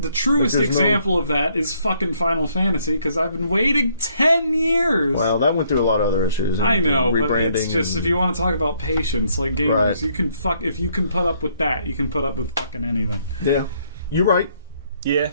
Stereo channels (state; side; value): inverted; both; correlation -0.68